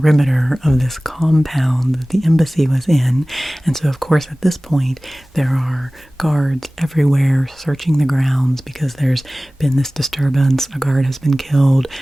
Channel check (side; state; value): both; normal; correlation 0.98